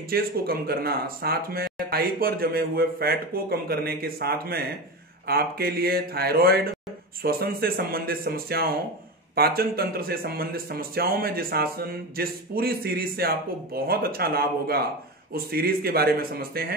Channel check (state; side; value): normal; both; correlation 0.22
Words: को कम करना, साथ में थाई पर जमे हुए फैट को कम करने के साथ में आपके लिए थायराइड, श्वसन से संबंधित समस्याओं, पाचन तंत्र से संबंधित समस्याओं में जिस पूरी सीरीज से आपको बहुत अच्छा लाभ होगा, उस सीरीज के बारे में समझते